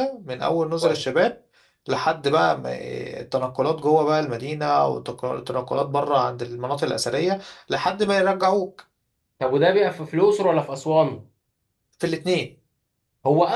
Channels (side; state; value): both; identical; correlation 1.00